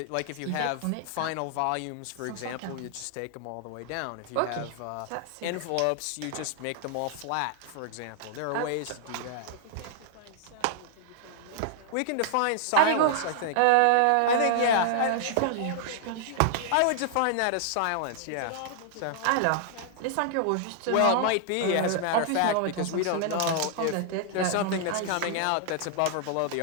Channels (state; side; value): different; both; correlation -0.01